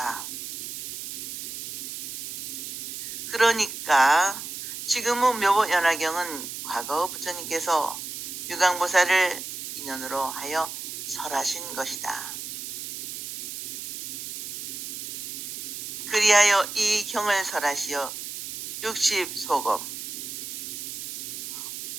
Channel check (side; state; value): right; noise; hiss, 7 dB below the sound